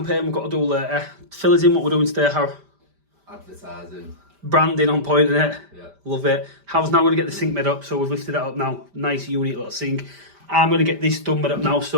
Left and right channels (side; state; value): left; late; 5.1 ms